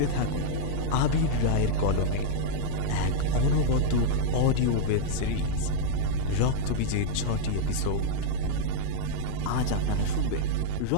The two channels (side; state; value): both; different; correlation -0.01